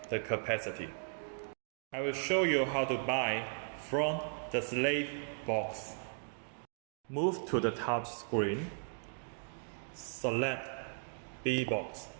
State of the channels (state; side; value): silent; left; digital silence